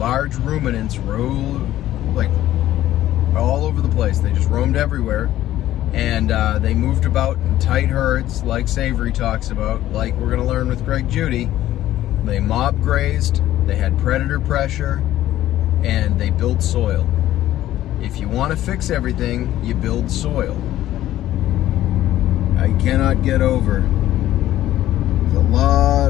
ruminants roamed like all over the place. They just roamed everywhere, and they moved about in tight herds, like Savory talks about, like we're going to learn with Greg Judy. They mob grazed, they had predator pressure, and they built soil. If you want to fix everything, you build soil. I cannot get over, there's a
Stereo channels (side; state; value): right; quieter; 13.7 dB